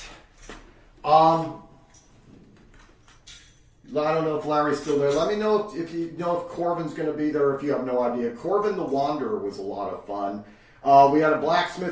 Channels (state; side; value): identical; both; correlation 1.00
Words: I don't know if Larry's still there. Let me know if you know if Corbin's going to be there, if you have no idea. Corbin the Wanderer was a lot of fun. We had a